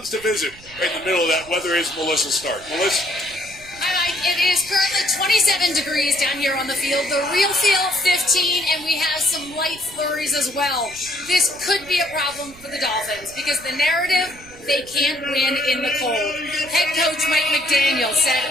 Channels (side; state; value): right; noise; rumble, 21 dB below the sound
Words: to visit. Right in the middle of that weather is Melissa Stark. Melissa? Hi, Mike. It is currently 27 degrees down here on the field. The real feel, 15, and we have some light flurries as well. This could be a problem for the Dolphins because the narrative, they can't win in the cold. Head coach Mike McDaniel said,